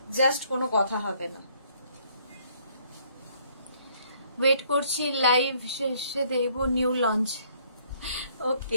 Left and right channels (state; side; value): inverted; both; correlation -0.64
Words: জাস্ট কোনো কথা হবে না। ওয়েট করছি, লাইভ শেষে দেব নিউ লঞ্চ।